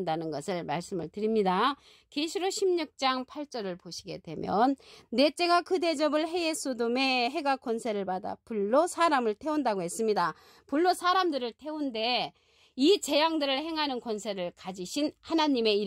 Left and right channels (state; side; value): identical; both; correlation 1.00